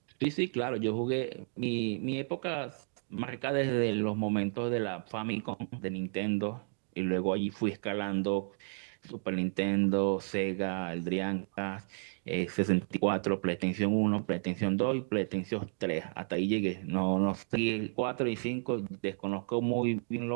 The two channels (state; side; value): silent; left; digital silence